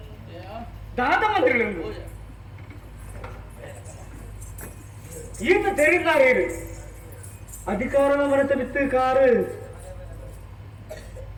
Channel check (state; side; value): identical; both; correlation 1.00